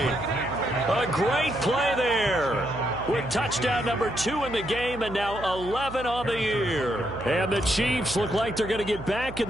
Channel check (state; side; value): noise; right; hum, 12 dB below the sound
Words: A great play there with touchdown number 2 in the game and now 11 on the year. And the Chiefs look like they're going to get back in